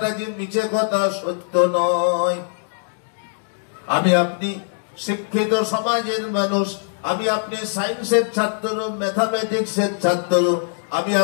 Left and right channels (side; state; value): right; silent; digital silence